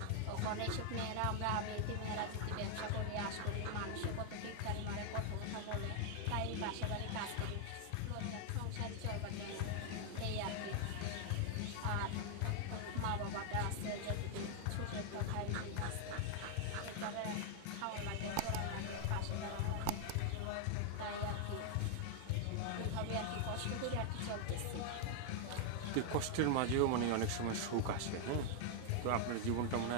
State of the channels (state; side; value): different; both; correlation 0.00